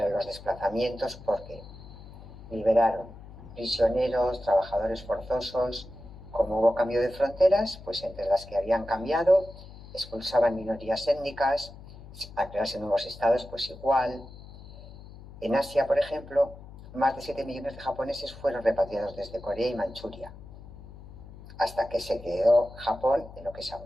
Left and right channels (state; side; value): noise; left; hum, 17 dB below the sound